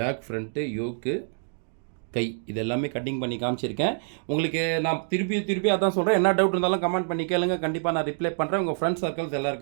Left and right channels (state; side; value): silent; left; digital silence